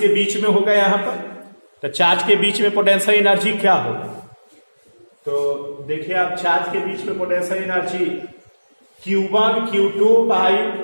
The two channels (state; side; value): inverted; both; correlation -1.00